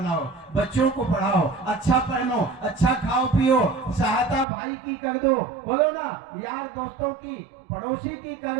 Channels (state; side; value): drops out; left; at 4.5 s